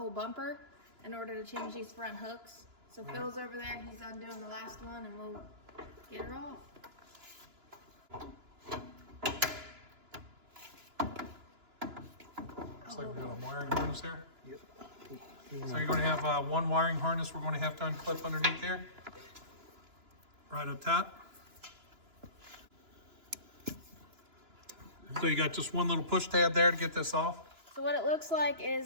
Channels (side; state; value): left; late; 2.9 ms